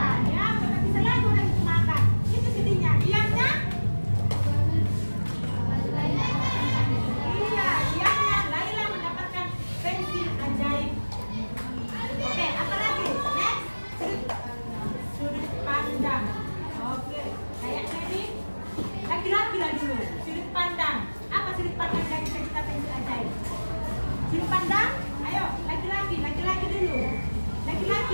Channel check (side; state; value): both; inverted; correlation -1.00